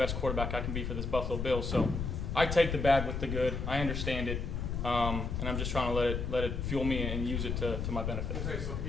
quarterback I can be for this Buffalo Bills. So I take the bad with the good. I understand it, and I'm just trying to let it fuel me and use it to my benefit.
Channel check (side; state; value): left; noise; rumble, 2 dB below the sound